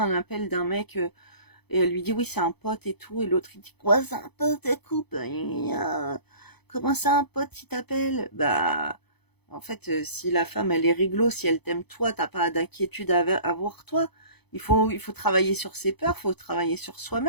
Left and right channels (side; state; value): right; late; 0.98 ms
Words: un appel d'un mec. Et elle lui dit oui, c'est un pote et tout. Et l'autre, il dit quoi, c'est un pote, écoute, comment ça, un pote, qui t'appelle? Bah, en fait, si la femme, elle est réglo, si elle t'aime toi, t'as pas d'inquiétude à avoir toi. Il faut travailler sur ses peurs, il faut travailler sur